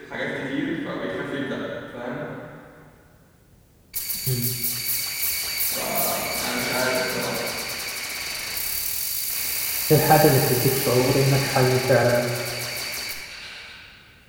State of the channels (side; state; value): both; identical; correlation 1.00